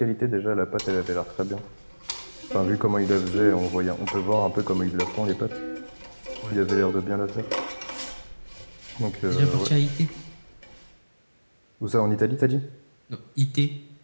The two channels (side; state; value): both; inverted; correlation -1.00